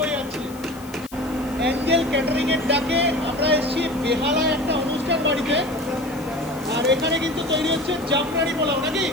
যাচ্ছে। অ্যাঞ্জেল ক্যাটারিং এর ডাকে আমরা এসেছি বেহালায় একটা অনুষ্ঠান বাড়িতে, আর এখানে কিন্তু তৈরি হচ্ছে জাফরানি পোলাও, নাকি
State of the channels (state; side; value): noise; left; hiss, 21 dB below the sound